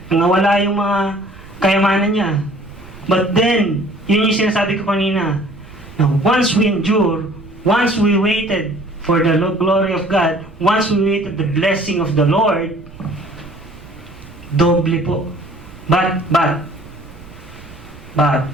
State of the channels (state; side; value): noise; right; rumble, 20 dB below the sound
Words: Nangawala yung mga kayamanan niya. But then, yun yung sinasabi ko kanina. Now, once we endure, once we waited for the glory of God, once we waited the blessing of the Lord, doble po. But,